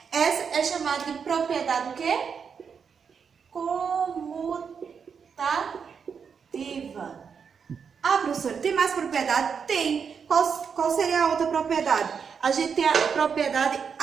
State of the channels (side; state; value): left; quieter; 6.4 dB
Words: Essa é chamada de propriedade o quê? Comutativa. Professora, tem mais propriedade? Tem. Qual seria a outra propriedade? A gente tem a propriedade